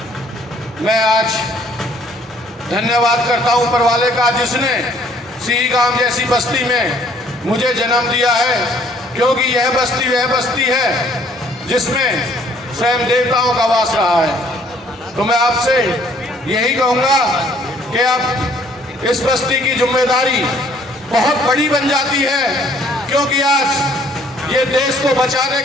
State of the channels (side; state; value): both; normal; correlation 0.61